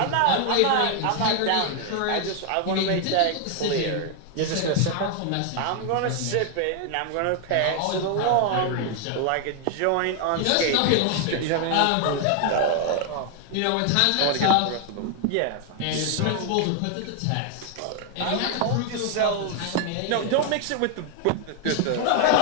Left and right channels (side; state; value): both; different; correlation 0.00